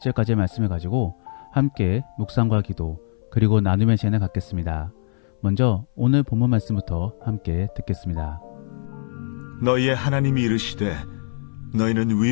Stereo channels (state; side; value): silent; right; 60 dB below the other